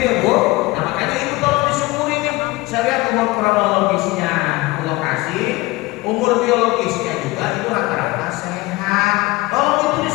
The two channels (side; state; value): right; quieter; 21.4 dB